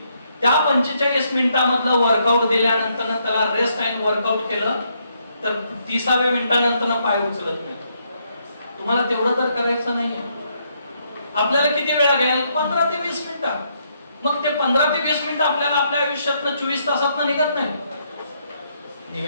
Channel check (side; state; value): both; inverted; correlation -0.74